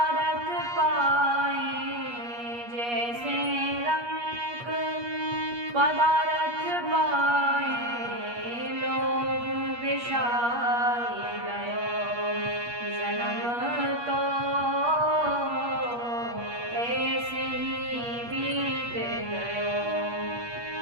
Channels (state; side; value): late; left; 8.4 ms